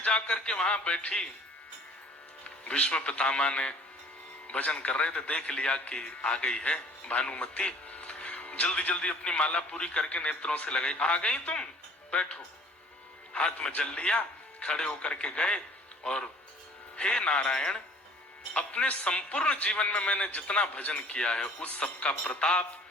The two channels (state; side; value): normal; both; correlation 0.51